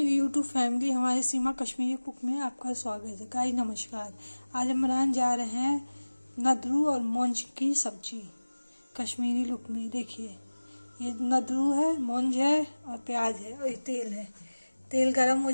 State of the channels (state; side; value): inverted; both; correlation -1.00